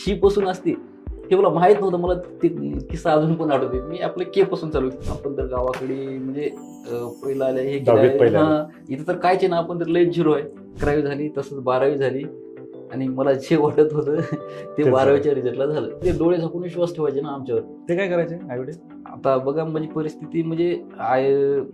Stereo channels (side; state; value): both; identical; correlation 1.00